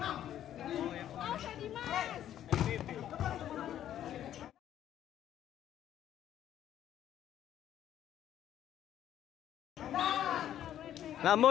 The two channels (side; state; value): right; quieter; 11.2 dB